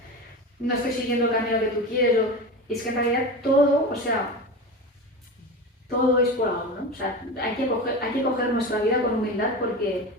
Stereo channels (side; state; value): both; normal; correlation 0.26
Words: no estoy siguiendo el camino que tú quieres, y es que en realidad todo, o sea, todo es por algo, ¿no? O sea, hay que coger nuestra vida con humildad porque